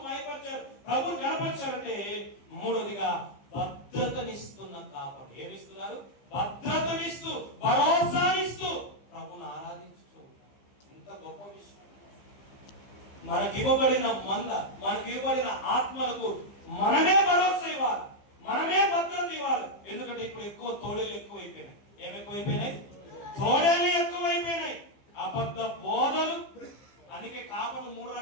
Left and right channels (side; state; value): right; late; 15 ms